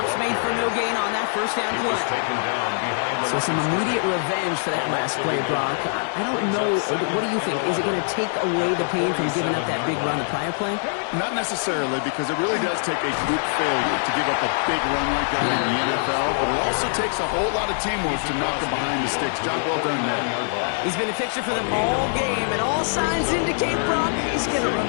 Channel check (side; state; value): right; silent; digital silence